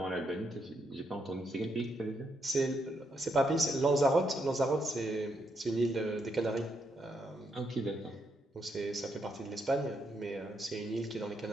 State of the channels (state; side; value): normal; both; correlation 0.78